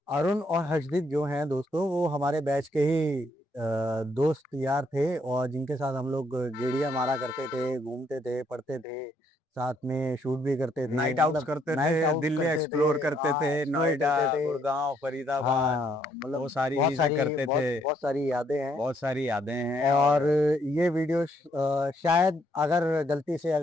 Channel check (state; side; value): normal; both; correlation 0.71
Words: अरुण और हर्षदीप जो हैं दोस्तों, वो हमारे बैच के ही दोस्त यार थे, और जिनके साथ हम लोग गेड़िया मारा करते थे, घूमते थे, पढ़ते थे, साथ में शूट भी करते थे, नाइट आउट्स मतलब करते थे, नाइट आउट दिल्ली करते थे। एक्सप्लोर करते थे, हाँ, एक्सप्लोर नोएडा, करते थे। गुड़गांव, फरीदाबाद, हाँ, वो मतलब सारी बहुत चीजें सारी करते थे। बहुत बहुत सारी यादें हैं। बहुत सारी यादें हैं। और और ये वीडियो शायद अगर गलती से